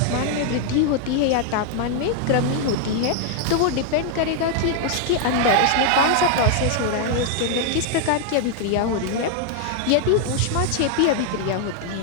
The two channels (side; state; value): both; different; correlation 0.00